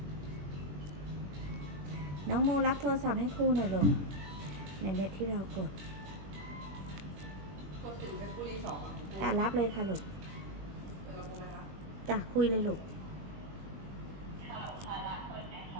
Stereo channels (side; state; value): left; late; 20 ms